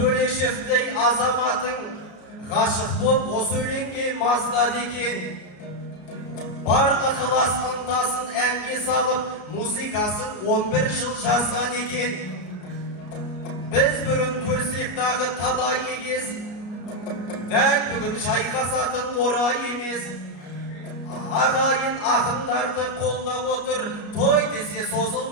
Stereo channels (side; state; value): right; late; 33 ms